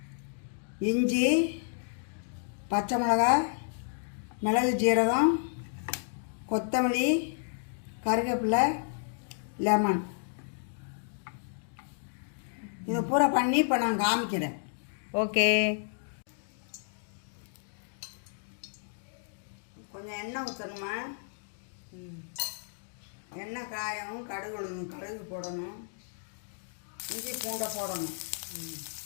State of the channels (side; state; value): right; silent; digital silence